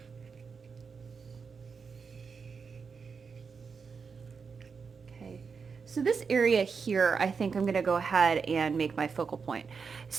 Okay, so this area here, I think I'm going to go ahead and make my focal point.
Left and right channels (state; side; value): quieter; left; 5.5 dB